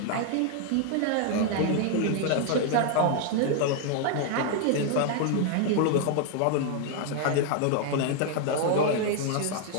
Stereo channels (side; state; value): both; different; correlation 0.00